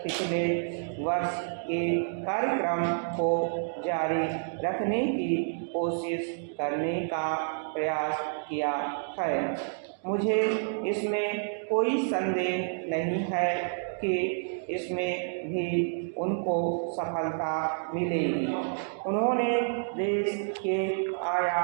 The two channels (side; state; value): left; silent; digital silence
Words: पिछले वर्ष के कार्यक्रम को जारी रखने की कोशिश करने का प्रयास किया है। मुझे इसमें कोई संदेह नहीं है कि इसमें भी उनको सफलता मिलेगी। उन्होंने देश के